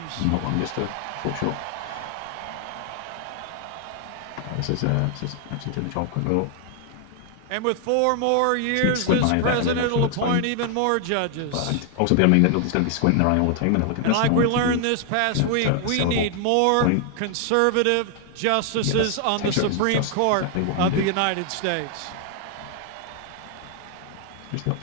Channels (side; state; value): both; different; correlation 0.00